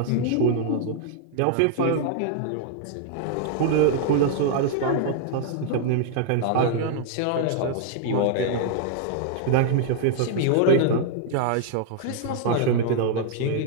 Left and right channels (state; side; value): different; both; correlation -0.01